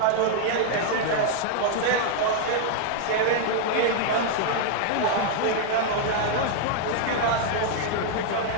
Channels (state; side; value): different; both; correlation 0.00